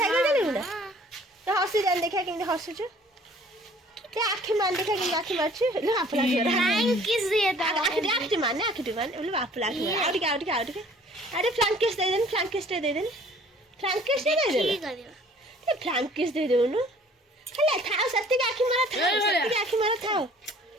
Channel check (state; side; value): normal; both; correlation 0.54